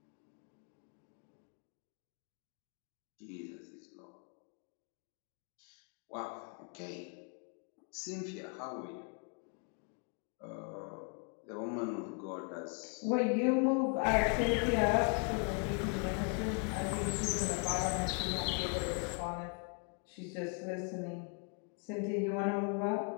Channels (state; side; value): quieter; right; 37.2 dB